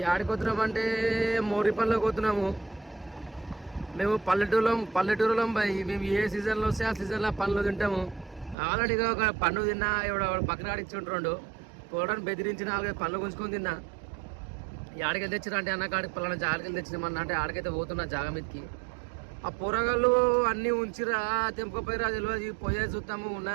ఆడిపోతున్నామంటే మోరిపల్లికి పోతున్నాము. మేము పల్లెటూరులో మేము ఏ సీజన్లో వస్తే ఆ సీజన్లో పండ్లు తింటాము. ఆల్రెడీగా ఒక పండు తిన్నా, ఎవడ పక్కన ఆడిచ్చుంటుండు పోవడానికి బెదిరించి 4-5 పండ్లు గుంజుకొని తిన్నా. ఈ ఆడికెళ్ళి తెచ్చినా అంటే అన్న కాడికి పలానా జాగకెళ్ళి తెచ్చినామన్నా అంటే ఆడికైతే పోతున్నా జాగ మీదకి. ఆ పొరగాళ్ళు అన్నీ ఉంచిరా తెంపుకపోయిరా తెలియదు. పోయే చూస్తాము ఉన్నా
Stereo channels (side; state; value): left; drops out; at 8.6 s